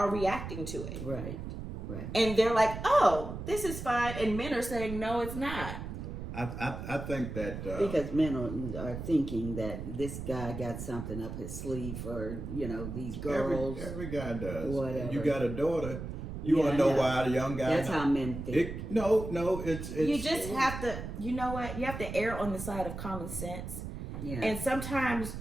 reacting to it, right? And they're like, oh, this is fine, and men are saying, no, it's not. I think that because men are thinking that this guy got something up his sleeve for these girls. Every guy does. Whatever. You got a daughter. You want to know why the young guy? That's how men think. No, it's. You just have to. You know what? You have to err on the side of common sense. Yeah. And sometimes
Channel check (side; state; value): right; noise; rumble, 7 dB below the sound